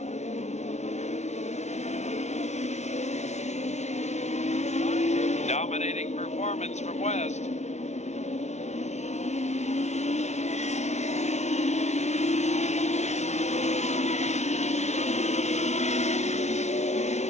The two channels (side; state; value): right; late; 0.32 ms